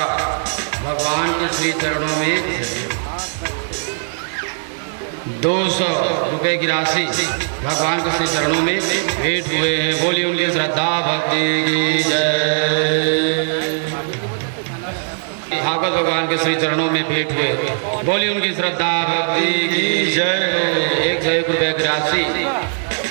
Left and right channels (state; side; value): silent; left; digital silence